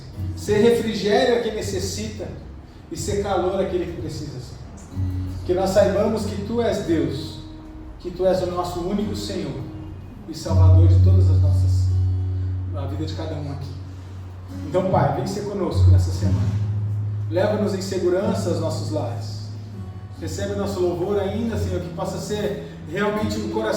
ser refrigério a quem necessita e ser calor a aquele que precisa ser. Que nós saibamos que Tu és Deus, que Tu és o nosso único Senhor e Salvador de todas as nossas, a vida de cada um aqui. Então, Pai, vem ser conosco nessa semana. Leva-nos em segurança aos nossos lares. Recebe o nosso louvor ainda, Senhor, que possa ser realmente um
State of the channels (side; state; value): both; identical; correlation 1.00